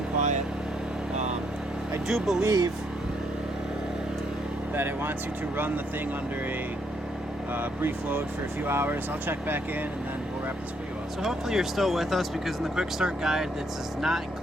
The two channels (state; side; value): normal; both; correlation 0.72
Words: quiet. I do believe that it wants you to run the thing under a brief load for a few hours. I'll check back in and then we'll wrap this video up. So hopefully you're still with us, because in the quick start guide that does not